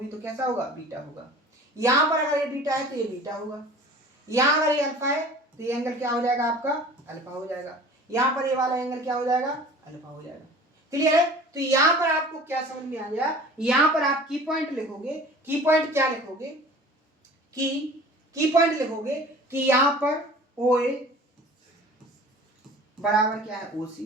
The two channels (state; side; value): normal; both; correlation 0.44